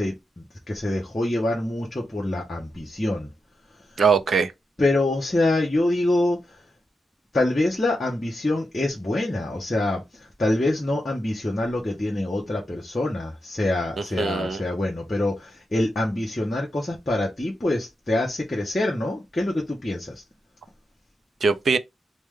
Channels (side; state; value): both; normal; correlation 0.87